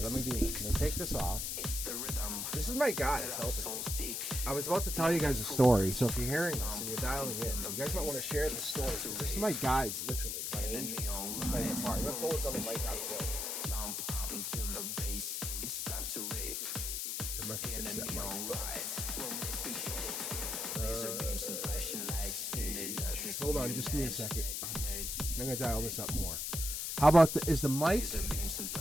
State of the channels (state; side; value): noise; left; hiss, 2 dB below the sound